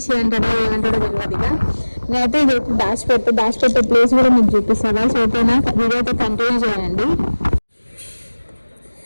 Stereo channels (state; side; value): inverted; both; correlation -1.00